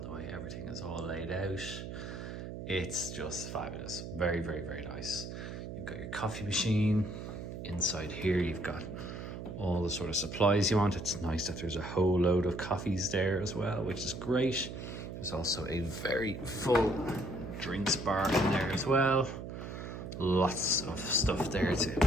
way everything is all laid out. It's just fabulous. Very, very, very nice. You've got your coffee machine. Inside here you've got all the sort of supplies you want. It's nice that there's a whole load of coffees there as well, which is great. There's also a very full drinks bar in there as well. Lots of stuff there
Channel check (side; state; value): right; noise; hum, 8 dB below the sound